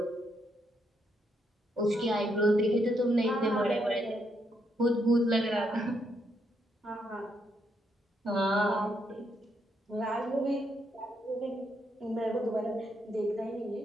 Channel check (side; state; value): both; normal; correlation 0.77